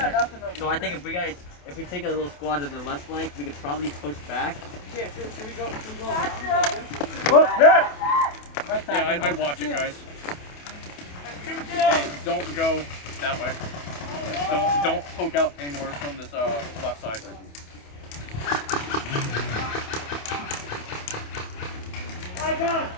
So I think if we take a little squad to the left flank, we could probably push back. Yeah, should we go around? Whoop, yeah. Yeah, I'd watch it, guys. Hey, don't go that way. Don't poke out anymore from this left side. My God,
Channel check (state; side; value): late; right; 28 ms